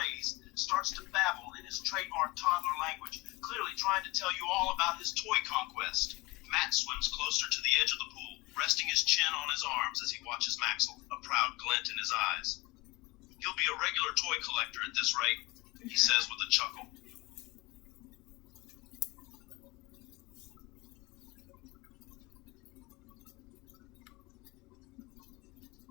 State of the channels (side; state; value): right; quieter; 23.3 dB